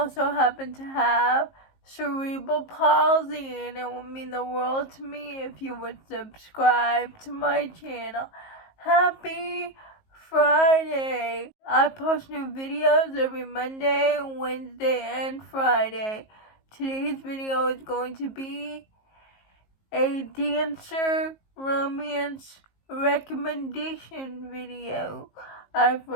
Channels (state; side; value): late; right; 19 ms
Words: happen to have cerebral palsy, and it would mean the world to me if you would subscribe to my channel. Happy Friday! I post new videos every Monday, Wednesday, and Friday. Today's video is going to be a dancer romance recommendation video. I've